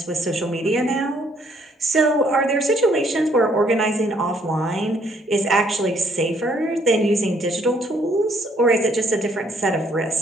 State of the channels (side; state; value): both; normal; correlation 0.66